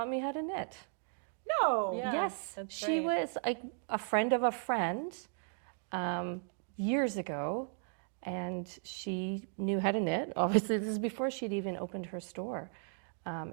me how to knit. No. Yeah, Yes, that's she right. was a friend of a friend years ago, and she knew how to knit. Obviously, this is before she'd even opened her store.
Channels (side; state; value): left; silent; 54 dB below the other